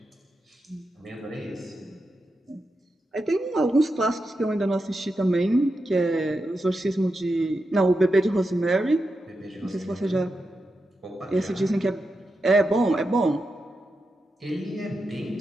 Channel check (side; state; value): both; normal; correlation 0.88